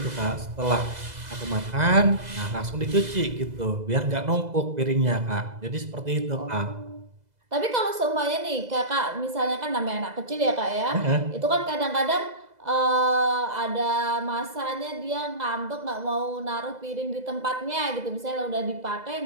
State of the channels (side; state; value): left; late; 2.0 ms